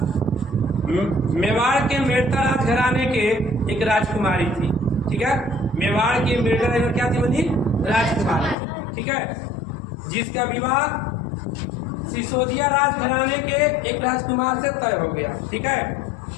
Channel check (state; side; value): drops out; right; at 8.6 s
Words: मेवाड़ के मेड़ता राजघराने के एक राजकुमारी थी, ठीक है। मेवाड़ की मेड़ता राजकुमारी क्या थी बनी? राजकुमारी, ठीक है, जिसका विवाह सिसोदिया राजघराने के एक राजकुमार से तय हो गया, ठीक है।